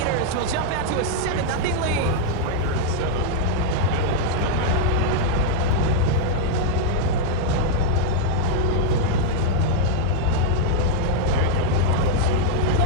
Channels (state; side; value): different; both; correlation -0.01